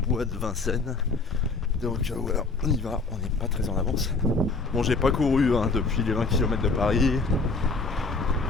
bois de Vincennes. Donc voilà, on y va, on n'est pas très en avance. Bon, j'ai pas couru depuis les 20 km de Paris.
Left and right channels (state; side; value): quieter; right; 3.8 dB